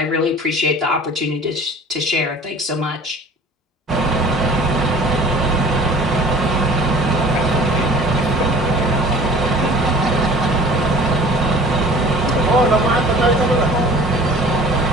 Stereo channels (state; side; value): normal; both; correlation 0.47